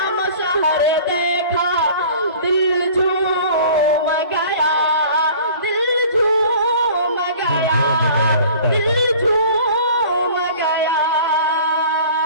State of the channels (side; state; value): both; inverted; correlation -0.46